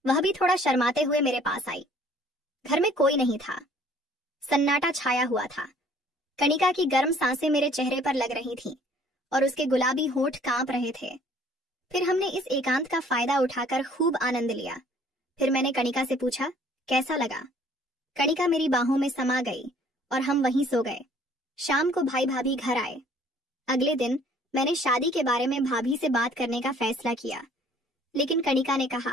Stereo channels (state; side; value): normal; both; correlation 0.57